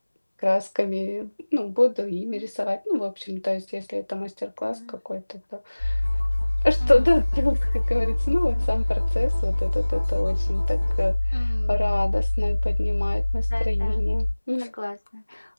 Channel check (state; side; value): inverted; both; correlation -1.00